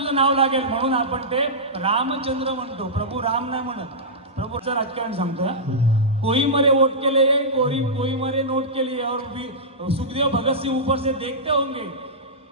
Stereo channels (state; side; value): normal; both; correlation -0.14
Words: नाव लागेल म्हणून आपण ते रामचंद्र म्हणतो, प्रभू राम नाही म्हणत। प्रभूचं राजकारण सांगतो, कोई मरे वोट के लिए कोई मरे नोट के लिए, और सुखदेव भगत सिंह ऊपर से देखते होंगे